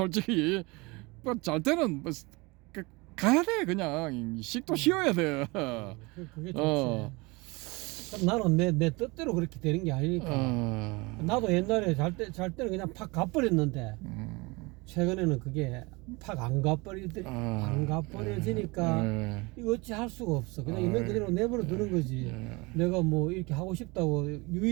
잘 때는 가야 돼. 그냥 식도 쉬어야 돼. 그게 좋지. 나는 내 뜻대로 그렇게 되는 게 아니니까. 나도 옛날에 잘 때는 그냥 팍 가버렸는데 최근에는 그게 팍 안 가버려지니까 이거 어찌 할 수가 없어. 그냥 있는 그대로 내버려 두는 거지. 내가 뭐 이렇게 하고 싶다고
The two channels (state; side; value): quieter; left; 25.4 dB